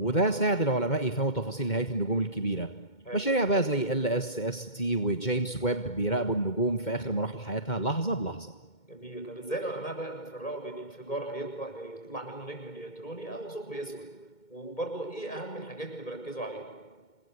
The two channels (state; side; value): late; right; 2.2 ms